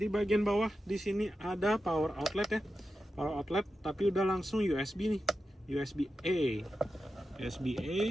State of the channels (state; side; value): normal; both; correlation 0.91